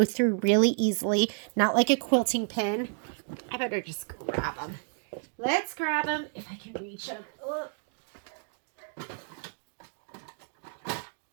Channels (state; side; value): silent; left; 58 dB below the other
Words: through really easily. Not like a quilting pin. I better just grab them. Let's grab them if I can reach them. Oh.